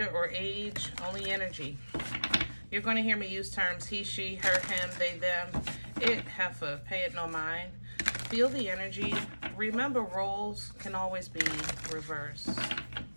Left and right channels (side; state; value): both; inverted; correlation -1.00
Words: or age, only energy. You're going to hear me use terms he, she, her, him, they, them, it, heifer, pay it no mind. Feel the energy. Remember, roles can always be reversed.